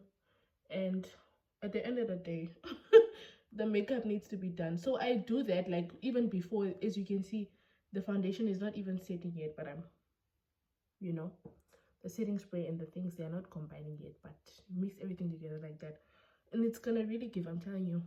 and at the end of the day the makeup needs to be done. So I do that like even before. As you can see, the foundation is not even setting yet, but I'm, you know, the setting spray and the things, they are not combining yet, but mix everything together like that and it's gonna really give. I'm telling you,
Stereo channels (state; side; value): identical; both; correlation 1.00